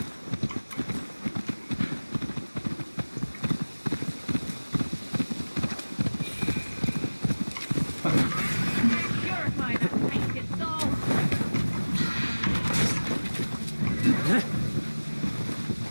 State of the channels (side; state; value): both; inverted; correlation -1.00